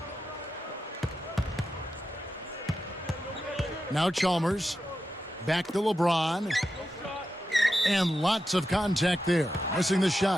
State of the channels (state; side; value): normal; both; correlation 0.89